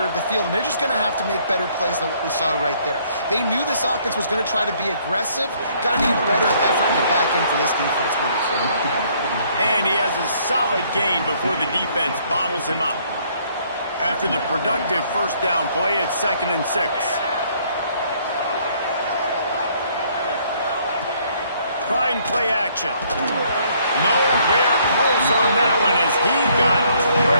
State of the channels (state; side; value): inverted; both; correlation -0.64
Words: of the field. And they're just going to have to make better plays than what we saw right there. They knew this offense was going to try to be aggressive. Got to need better effort in the back end for this defense moving forward. And he has a solid gain before the defense bottles him up. After the productive first down play, it's 2nd and 6. Trying play action. Nowhere close on that one as he got